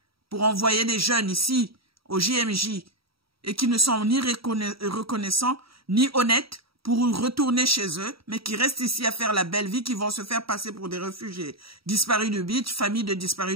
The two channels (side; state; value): left; late; 0.75 ms